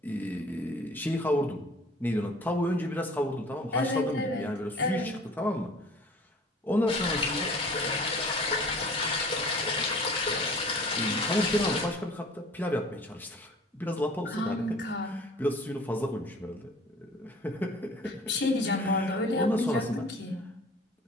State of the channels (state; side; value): normal; both; correlation 0.48